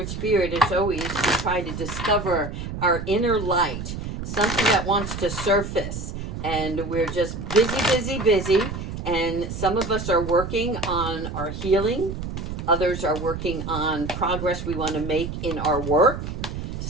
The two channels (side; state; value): right; noise; rumble, 6 dB below the sound